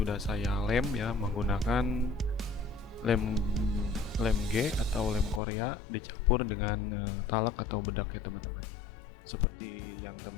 saya lem ya, menggunakan lem G atau lem Korea dicampur dengan talak atau bedak ya teman-teman, seperti yang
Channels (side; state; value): right; drops out; at 5.4 s